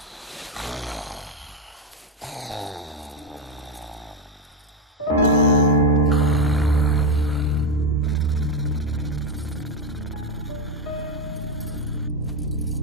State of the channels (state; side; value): normal; both; correlation 0.08